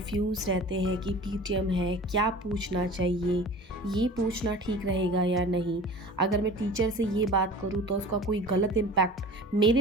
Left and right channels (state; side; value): normal; both; correlation 0.40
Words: रहते हैं कि पीटीएम है, क्या पूछना चाहिए, ये पूछना ठीक रहेगा या नहीं। अगर मैं टीचर से ये बात करूँ तो उसका कोई गलत इम्पैक्ट